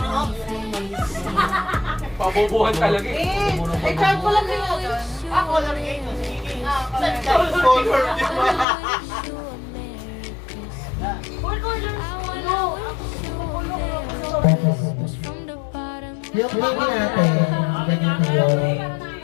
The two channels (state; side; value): drops out; right; at 8.7 s